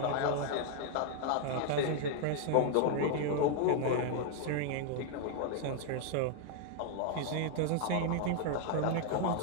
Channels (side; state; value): both; different; correlation 0.00